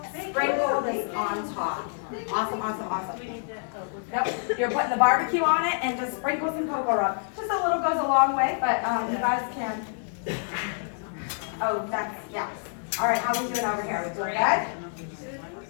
sprinkle this on top. Awesome, awesome, awesome. Yep, you're putting the barbecue on it and just sprinkle some cocoa rub. Just a little goes a long way, but you guys can. Oh, that's, yeah. All right, how are we doing over here? Are we doing good?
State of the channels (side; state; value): right; silent; digital silence